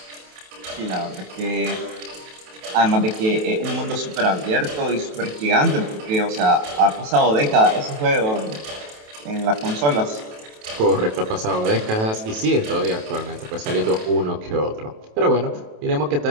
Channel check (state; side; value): late; left; 28 ms